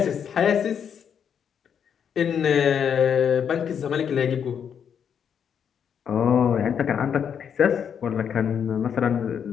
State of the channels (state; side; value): quieter; right; 7.9 dB